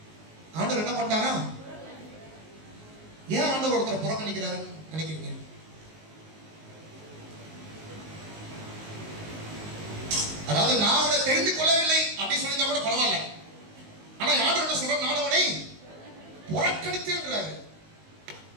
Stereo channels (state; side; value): late; left; 19 ms